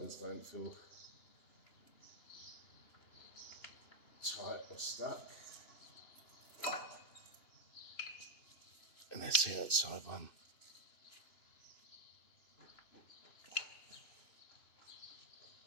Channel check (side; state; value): right; late; 2.9 ms